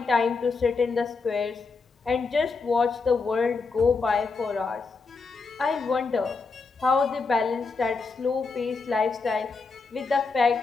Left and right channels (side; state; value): right; quieter; 4.4 dB